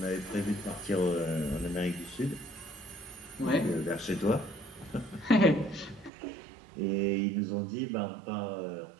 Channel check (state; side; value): drops out; left; at 6.1 s